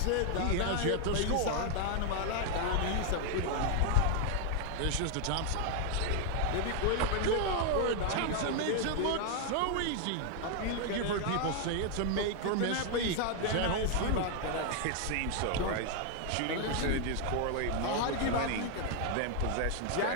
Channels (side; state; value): both; different; correlation 0.00